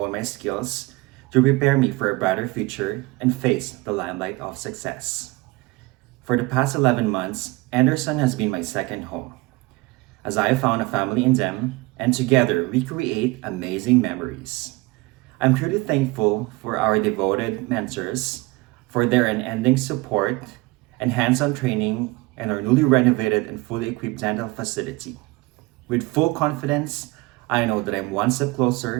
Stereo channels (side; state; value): left; quieter; 22.8 dB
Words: my skills, to prepare me for a brighter future and face the limelight of success. For the past 11 months, Anderson has been my second home, as I have found a family in them, and together we create amazing memories. I'm truly thankful for our devoted mentors, for their unending support and hands-on training in our newly renovated and fully equipped dental facility. With full confidence, I know that I'm one step